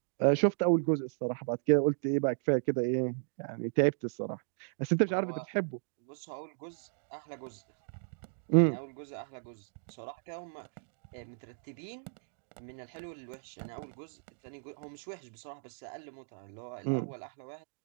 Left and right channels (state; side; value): silent; left; digital silence